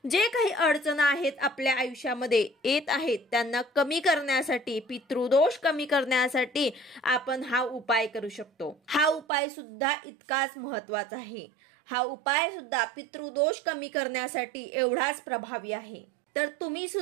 जे काही अडचणी आहेत आपल्या आयुष्यामध्ये येत आहेत त्यांना कमी करण्यासाठी, पितृदोष कमी करण्यासाठी आपण हा उपाय करू शकतो। हा उपाय सुद्धा इतकाच महत्त्वाचा आहे। हा उपाय सुद्धा पितृदोष कमी करण्यासाठी एवढाच प्रभावी आहे। तर तुम्ही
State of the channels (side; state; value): left; drops out; at 9.2 s